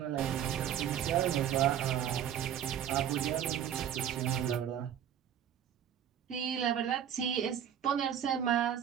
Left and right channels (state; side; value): quieter; left; 9.6 dB